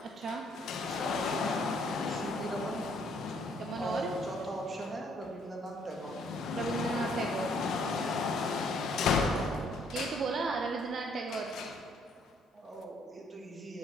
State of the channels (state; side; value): normal; both; correlation 0.66